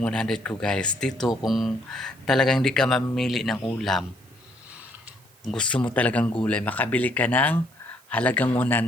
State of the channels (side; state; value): right; noise; hiss, 29 dB below the sound